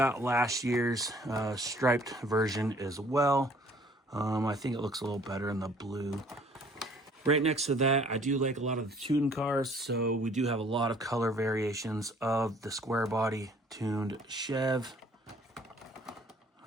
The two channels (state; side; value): normal; both; correlation 0.56